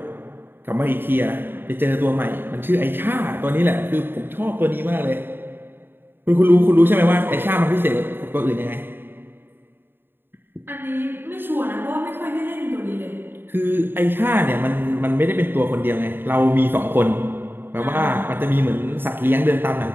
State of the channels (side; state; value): left; late; 0.10 ms